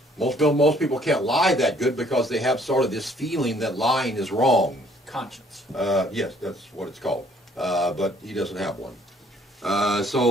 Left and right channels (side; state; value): both; normal; correlation 0.61